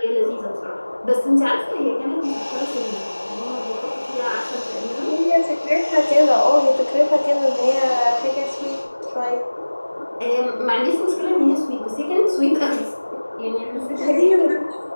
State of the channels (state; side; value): inverted; both; correlation -1.00